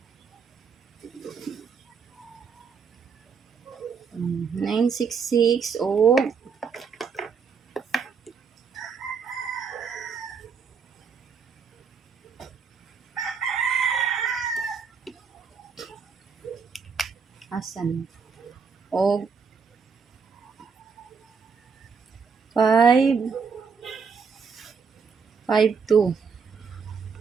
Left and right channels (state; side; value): quieter; left; 5.7 dB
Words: 966 o asan o 552